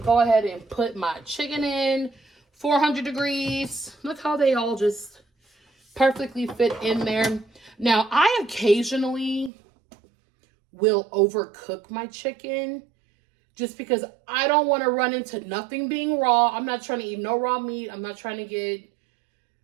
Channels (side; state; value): left; drops out; at 9.5 s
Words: go ahead and put my chicken in, 400 degrees. Look how they all just perfectly fit in there. Now, I occasionally will overcook my chicken just because I don't want to run into nothing being raw. I'm not trying to eat no raw meat. I'm not trying to get,